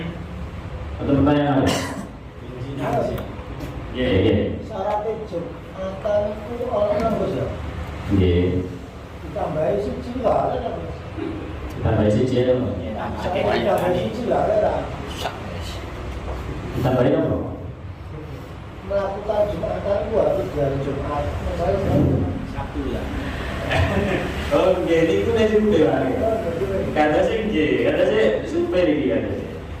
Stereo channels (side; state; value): both; identical; correlation 1.00